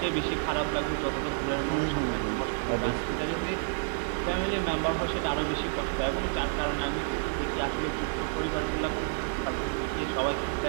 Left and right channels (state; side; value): silent; left; digital silence